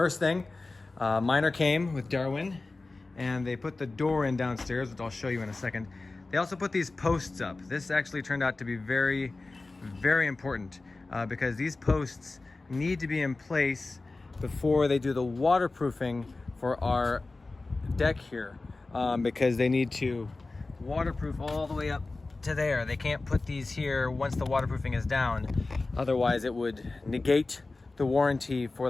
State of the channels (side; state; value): right; quieter; 3.4 dB